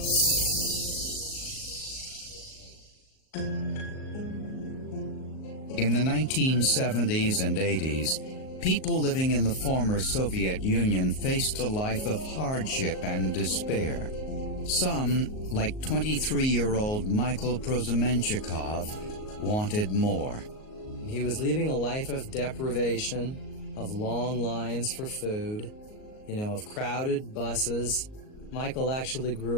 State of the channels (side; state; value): right; late; 38 ms